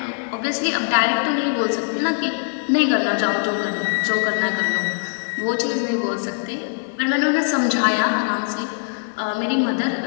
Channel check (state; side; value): silent; right; digital silence